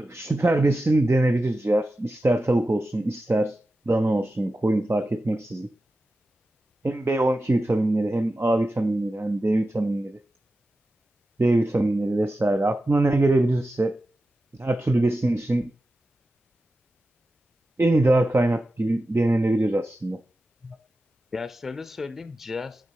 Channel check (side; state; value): both; normal; correlation 0.92